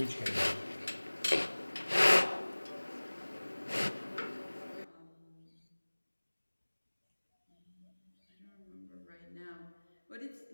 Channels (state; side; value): inverted; both; correlation -1.00